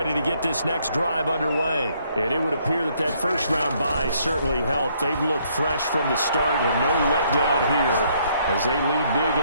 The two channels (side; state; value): both; inverted; correlation -0.68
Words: to get this next drive underway. And it would appear that that first-round bye certainly helped. They've looked fresh from the start and no letdown here as they lead big